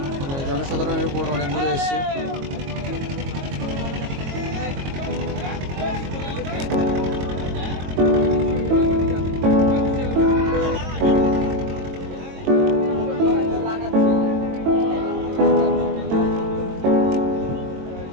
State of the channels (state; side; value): late; left; 22 ms